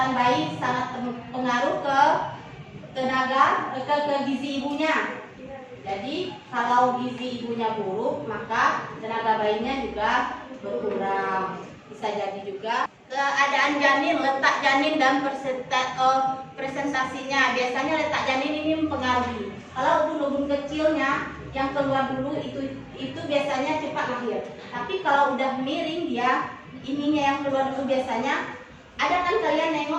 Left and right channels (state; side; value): identical; both; correlation 1.00